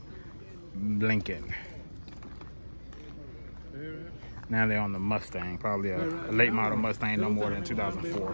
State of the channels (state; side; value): inverted; both; correlation -1.00